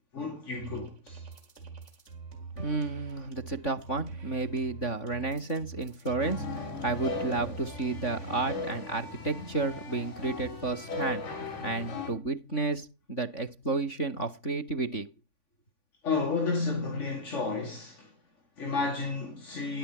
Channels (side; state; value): right; late; 3.5 ms